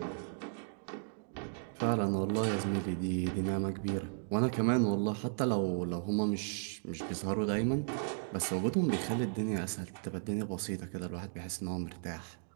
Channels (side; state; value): left; silent; digital silence